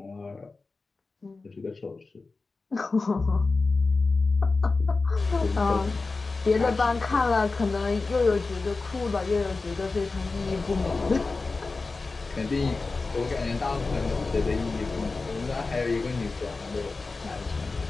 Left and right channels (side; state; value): right; quieter; 3.8 dB